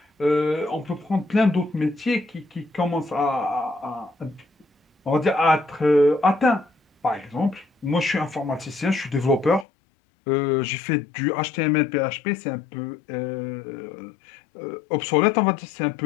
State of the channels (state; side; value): drops out; right; at 9.7 s